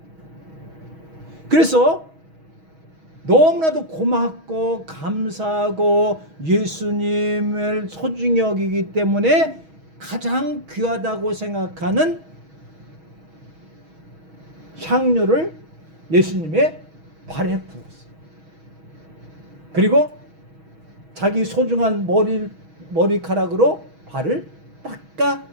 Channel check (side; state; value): left; late; 6.3 ms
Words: 그래서 너무나도 고맙고 감사하고 예수님을 소중히 여기기 때문에 가장 귀하다고 생각하는 향료를 예수님의 발에 부었어요. 그리고 자기 소중한 머리카락으로 발을 닦아